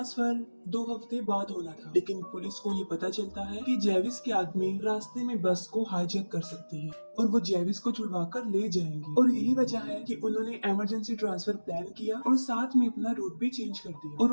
2 हफ्ते बाद होना था लेकिन पुलिस को ये पता चलता है कि जेविस के आदमी रास्ते में बस को हाईजैक कर सकती है और वो जेविस को छुड़वा कर ले जाएंगे और यही वजह है कि उन्होंने इमरजेंसी ट्रांसफर प्लान किया और साथ में अपना रूट भी चेंज कर दिया और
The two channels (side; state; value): both; inverted; correlation -1.00